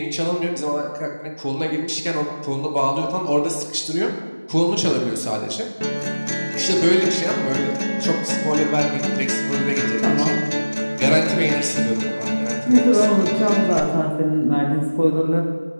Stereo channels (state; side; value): inverted; both; correlation -1.00